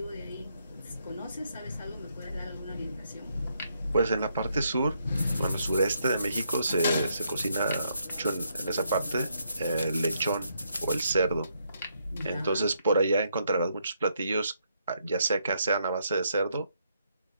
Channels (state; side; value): inverted; both; correlation -0.75